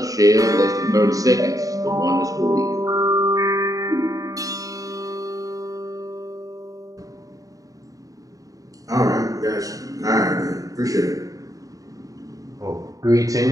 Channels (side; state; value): left; late; 0.17 ms